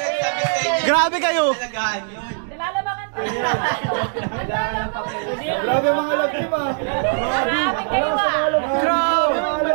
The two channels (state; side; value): silent; left; digital silence